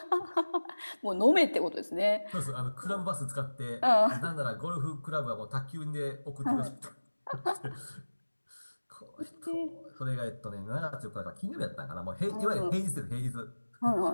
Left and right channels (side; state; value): both; inverted; correlation -1.00